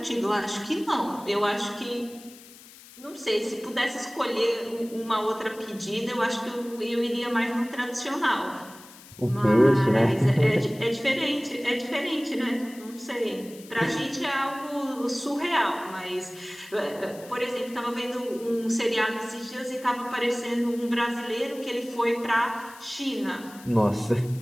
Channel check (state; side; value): noise; left; hiss, 20 dB below the sound